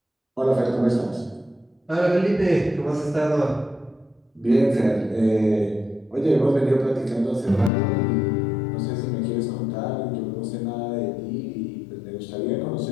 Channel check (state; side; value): drops out; right; at 7.7 s